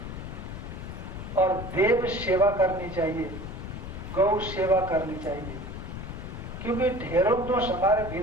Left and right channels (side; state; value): left; noise; rumble, 8 dB below the sound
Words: और देव सेवा करनी चाहिए, गौ सेवा करनी चाहिए, क्योंकि ढेरों दोष हमारे